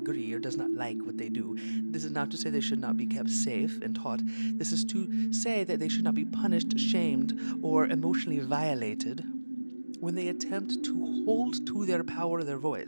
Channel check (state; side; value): inverted; both; correlation -1.00